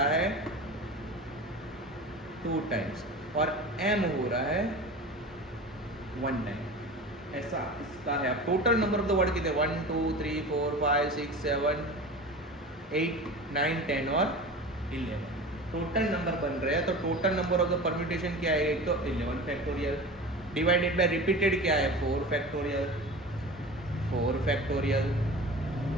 है 2 टाइम्स, और एम हो रहा है 1 टाइम। ऐसा इसका है। अब total number of the word कितने, 1 2 3 4 5 6 7 8 9 10 और 11 टोटल नंबर बन रहे हैं। तो total number of the permutation क्या है, एक तो 11 फैक्टोरियल डिवाइडेड बाय रिपीटेड क्या है, 4 फैक्टोरियल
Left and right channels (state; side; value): normal; both; correlation 0.34